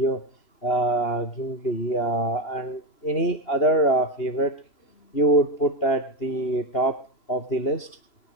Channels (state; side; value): late; right; 3.0 ms